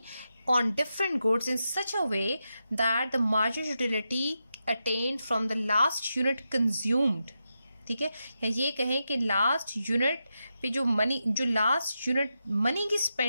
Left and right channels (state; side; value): inverted; both; correlation -0.88